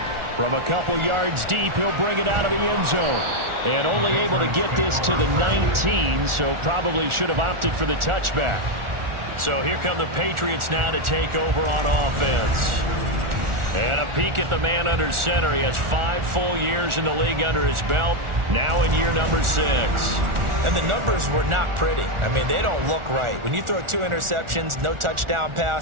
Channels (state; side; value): late; left; 1.4 ms